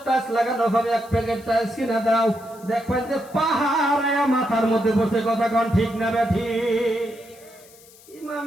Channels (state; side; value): noise; left; hiss, 24 dB below the sound